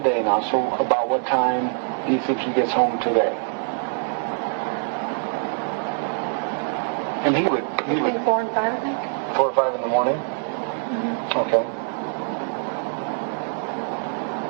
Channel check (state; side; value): silent; left; 63 dB below the other